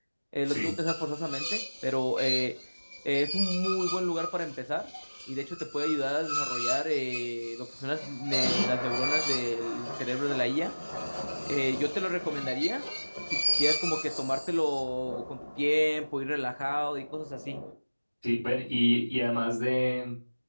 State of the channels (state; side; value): inverted; both; correlation -1.00